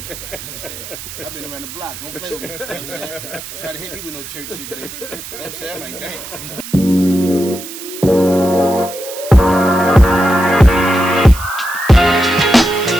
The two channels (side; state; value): right; noise; hiss, 12 dB below the sound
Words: You know what I'm saying? I've been around the block. Don't play with me. You know what I'm saying? Try to hit me with no church shit today. You know what I'm saying? I'm like, damn.